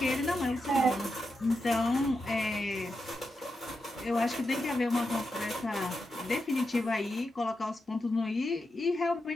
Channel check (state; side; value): normal; both; correlation 0.88